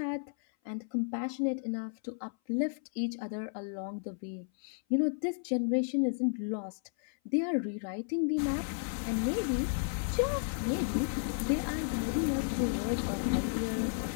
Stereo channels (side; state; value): right; silent; 56 dB below the other